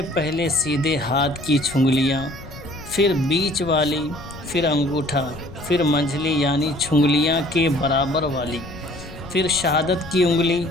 پہلے سیدھے ہاتھ کی چھنگلیاں، پھر بیچ والی، پھر انگوٹھا، پھر منجلی یعنی چھنگلیاں کے برابر والی، پھر شہادت کی انگلی۔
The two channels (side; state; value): left; noise; rumble, 16 dB below the sound